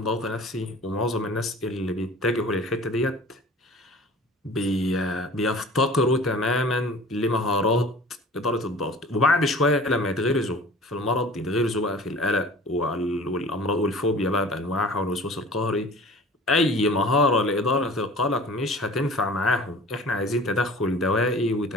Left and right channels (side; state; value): both; normal; correlation 0.44